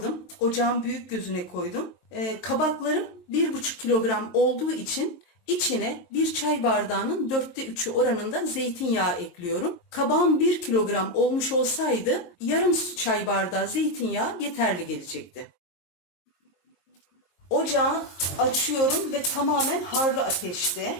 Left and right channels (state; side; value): late; right; 23 ms